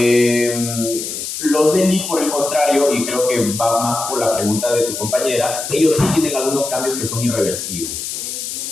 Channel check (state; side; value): noise; left; hiss, 6 dB below the sound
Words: Los de elite, por el contrario, y creo que va más por la pregunta de tu compañera, ellos sí tienen algunos cambios que son irreversibles.